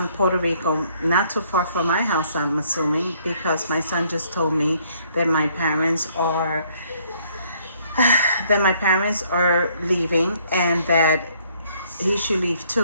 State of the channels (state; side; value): inverted; both; correlation -0.65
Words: Puerto Rico, not too far from my house, I'm assuming, because my son just told me that my parents are leaving and that he should leave